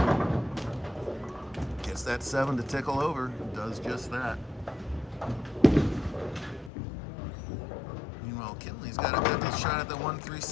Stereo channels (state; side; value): drops out; right; at 6.7 s